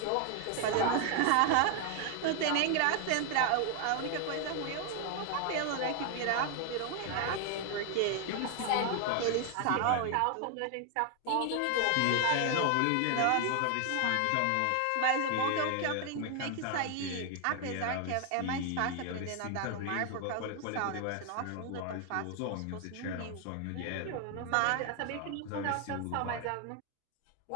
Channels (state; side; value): different; both; correlation 0.00